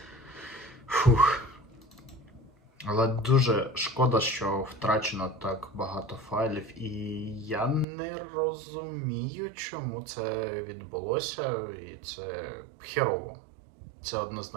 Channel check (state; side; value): drops out; left; at 7.9 s